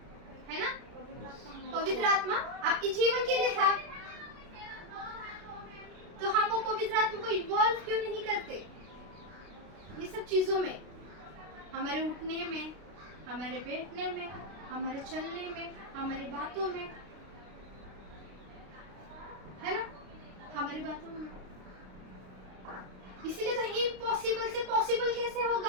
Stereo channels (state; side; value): late; left; 32 ms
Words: है ना। पवित्र आत्मा आपके जीवन के लिए था, तो हम वो पवित्र आत्मा को इन्वॉल्व क्यों नहीं करते ये सब चीजों में, हमारे उठने में, हमारे बैठने में, हमारे चलने में, हमारी बातों में, है ना, हमारी बातों में। इसीलिए तो इम्पॉसिबल से पॉसिबल कैसे